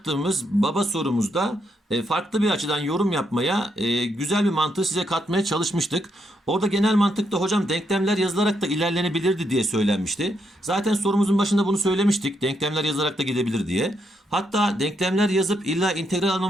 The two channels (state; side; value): normal; both; correlation 0.78